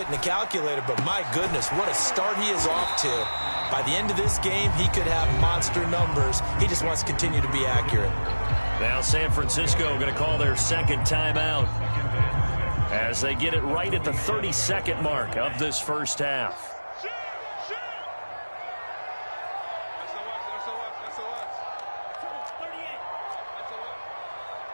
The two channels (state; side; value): inverted; both; correlation -1.00